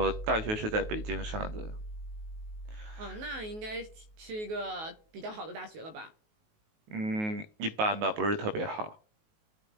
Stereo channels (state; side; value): late; left; 19 ms